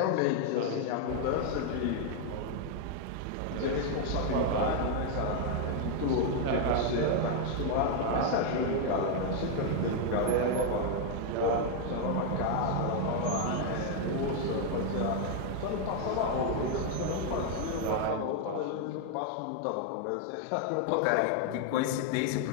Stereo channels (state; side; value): different; both; correlation 0.00